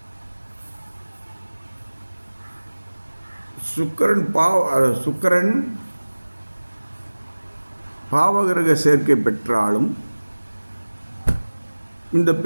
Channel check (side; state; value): both; inverted; correlation -1.00